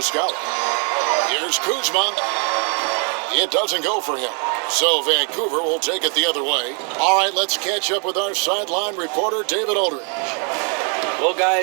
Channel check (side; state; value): left; quieter; 39.7 dB